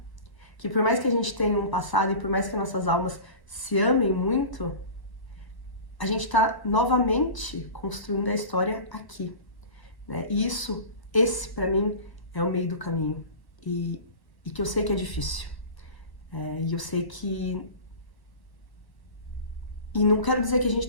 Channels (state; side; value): late; right; 1.1 ms